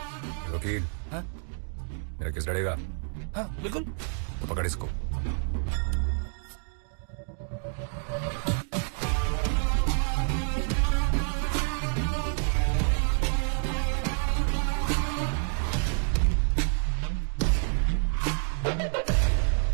वकील। हाँ? मेरा केस लड़ेगा? हाँ बिल्कुल। तो पकड़ इसको।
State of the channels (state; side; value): silent; left; 59 dB below the other